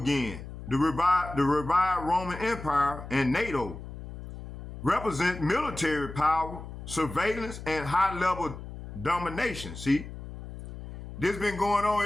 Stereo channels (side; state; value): left; noise; hum, 11 dB below the sound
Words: The revived Roman Empire and NATO represent military power, surveillance, and high-level domination. See, this been going